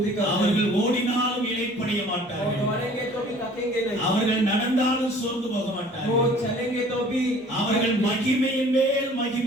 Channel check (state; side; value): normal; both; correlation 0.51